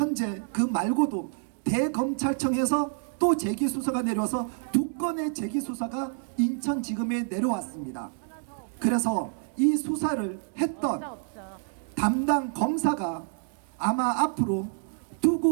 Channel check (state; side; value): silent; left; 59 dB below the other